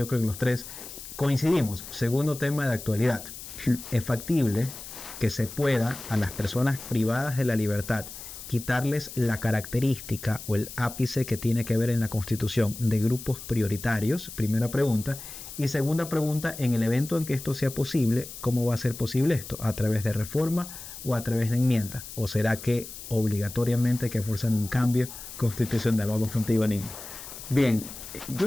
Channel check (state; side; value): noise; left; hiss, 12 dB below the sound